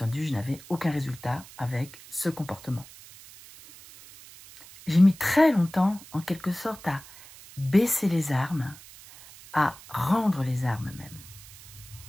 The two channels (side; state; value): right; noise; hiss, 19 dB below the sound